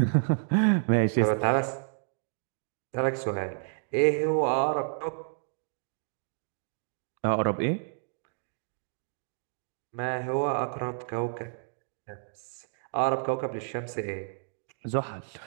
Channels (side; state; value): left; silent; digital silence